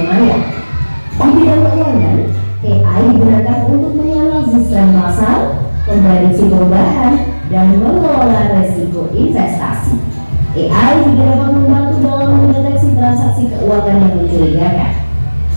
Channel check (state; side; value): inverted; both; correlation -1.00